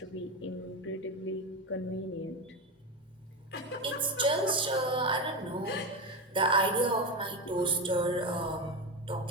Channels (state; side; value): normal; both; correlation 0.16